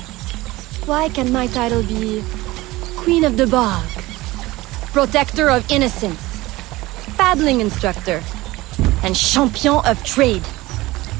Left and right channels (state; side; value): quieter; left; 19.3 dB